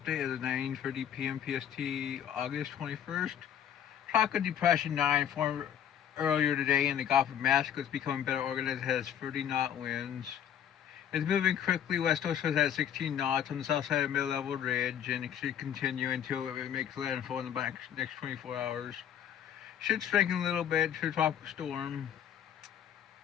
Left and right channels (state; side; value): quieter; right; 9.5 dB